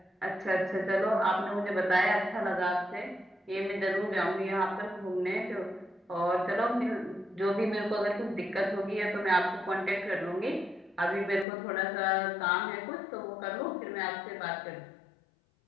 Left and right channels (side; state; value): right; drops out; at 11.5 s